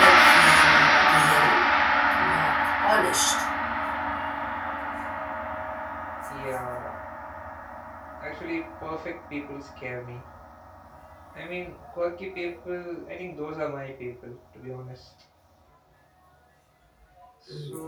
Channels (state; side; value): identical; both; correlation 1.00